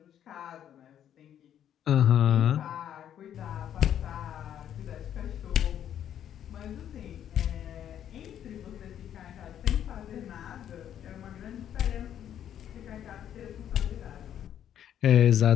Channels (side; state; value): right; quieter; 10.1 dB